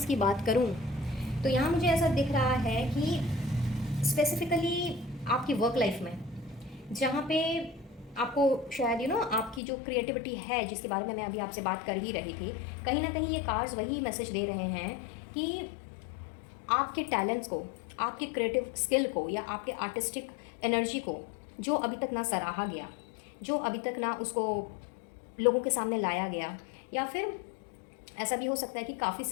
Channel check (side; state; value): right; drops out; at 9.6 s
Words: की बात करूं तो यहाँ मुझे ऐसा दिख रहा है कि स्पेसिफिकली आपकी वर्क लाइफ में, जहाँ पे आपको शायद आपकी जो क्रिएटिविटी है जिसके बारे में मैं अभी आपसे बात कर ही रही थी, कहीं ना कहीं ये कार्ड्स वही मैसेज दे रहे हैं कि आपके टैलेंट्स को, आपके क्रिएटिव स्किल को या आपके आर्टिस्टिक एनर्जी को जो अभी तक ना सराहा गया, जो अभी तक ना उसको लोगों के सामने लाया गया, या फिर ऐसा भी हो सकता है कि काफ़ी